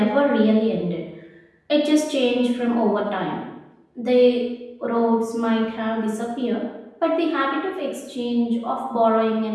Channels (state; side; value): identical; both; correlation 1.00